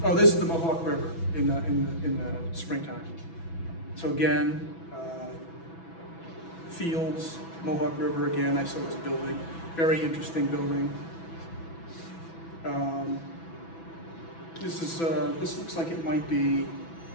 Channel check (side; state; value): right; late; 6.1 ms